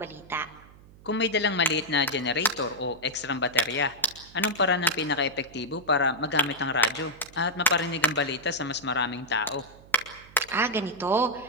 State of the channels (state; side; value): noise; right; hum, 23 dB below the sound